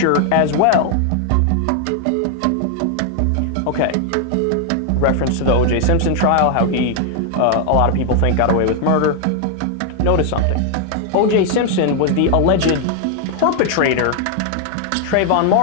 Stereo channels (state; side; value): different; both; correlation 0.00